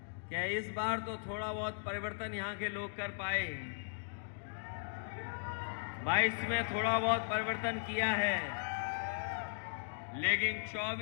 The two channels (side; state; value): right; silent; digital silence